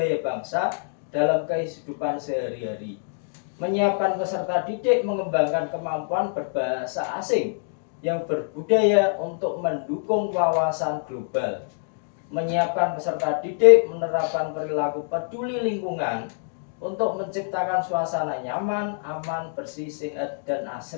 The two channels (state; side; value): silent; right; digital silence